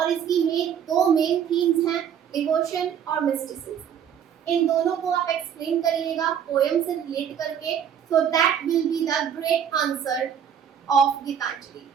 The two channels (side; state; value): left; quieter; 8.5 dB